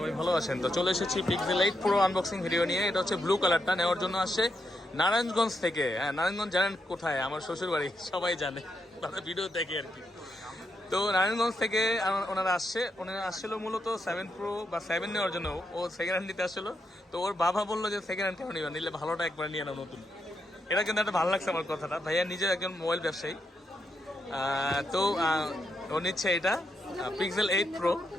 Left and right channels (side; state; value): both; normal; correlation 0.81